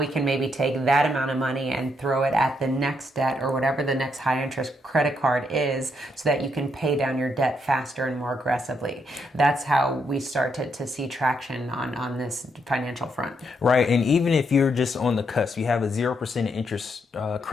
can maybe take that amount of money and throw it at the next debt or whatever the next high interest credit card is so that you can pay down your debt faster and more aggressively. That's how we start to see traction on this financial front. Right. And even if you're just on the cusp, you have a 0% interest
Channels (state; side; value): normal; both; correlation 0.77